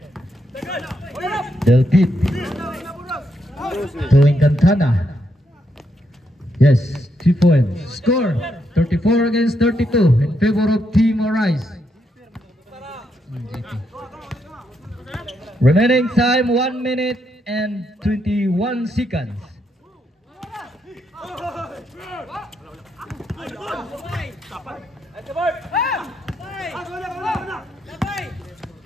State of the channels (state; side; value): normal; both; correlation 0.79